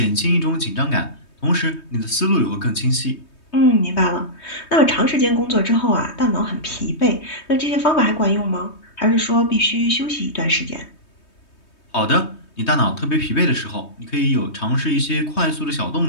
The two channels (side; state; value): right; late; 3.2 ms